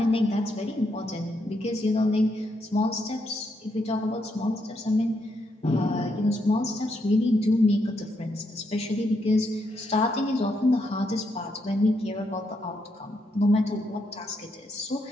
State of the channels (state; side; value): normal; both; correlation 0.78